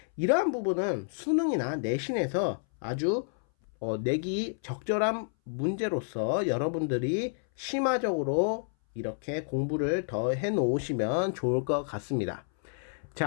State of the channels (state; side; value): silent; right; 58 dB below the other